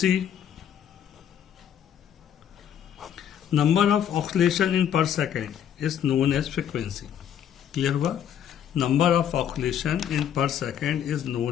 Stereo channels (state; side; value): quieter; right; 9.4 dB